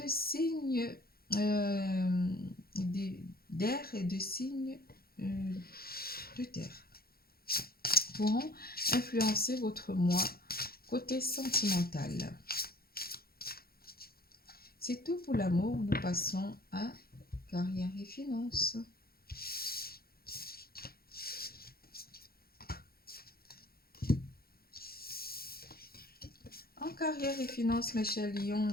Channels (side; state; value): right; late; 0.44 ms